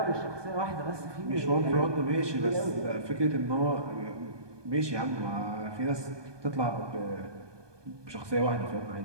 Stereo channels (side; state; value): left; late; 1.2 ms